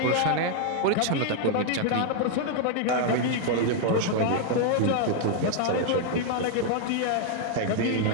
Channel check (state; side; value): different; both; correlation 0.00